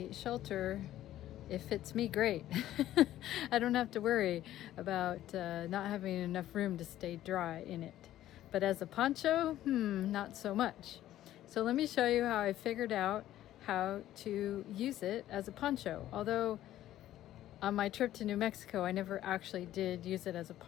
shelter, it fits me great. I don't have to worry about not having enough room to stay dry in it. But as a poncho, not so much. So let me show you how I figured out how to use it as a poncho. Although on my trip to New Mexico, I never actually did use it as a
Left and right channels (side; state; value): right; quieter; 13.3 dB